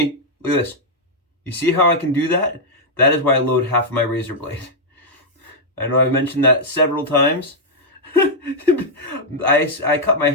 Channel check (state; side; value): normal; both; correlation -0.04